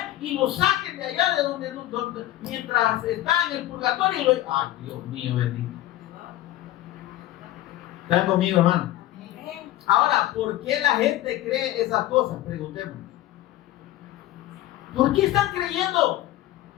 y lo saquen de allá de donde mientras está en el purgatorio y lo... Ay, Dios mío, bendito. ¿Están conmigo, hermano? Ahora, ¿por qué la gente cree esas cosas? Preguntémonos. ¿Por qué están creyendo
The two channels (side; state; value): right; quieter; 14.9 dB